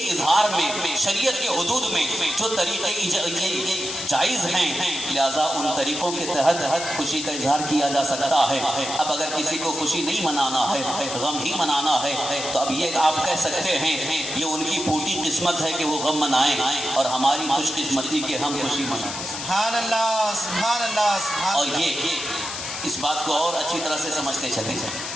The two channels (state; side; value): noise; left; hiss, 6 dB below the sound